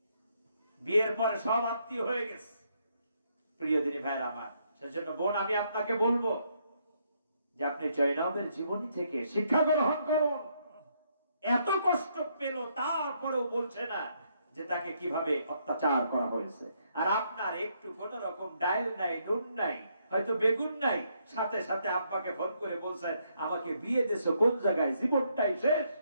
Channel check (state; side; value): inverted; both; correlation -0.74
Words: বিয়ের পরে সব আত্মীয় হয়ে গেছে। প্রিয় দিনী ভাইয়ের আমার, সেজন্য বোন আমি আপনাকে বলবো যে আপনি জয়নবের জীবনী থেকে শিক্ষা গ্রহণ করুন। এত কষ্ট পেল, তারপরেও বলছে না যে তাকে কিভাবে অত্যাচার করা হয়েছে। আর আপনার একটু কোন রকম ডাল নাই, নুন নাই, হয়তো বেগুন নাই, সাথে সাথে আব্বাকে ফোন করে বলছেন আমাকে বিয়ে দিছো কোন জায়গায়, জীবনটাই শেষ।